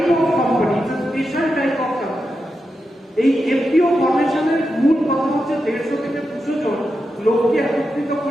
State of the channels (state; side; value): normal; both; correlation 0.88